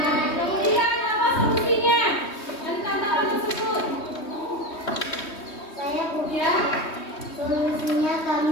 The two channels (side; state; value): right; late; 3.2 ms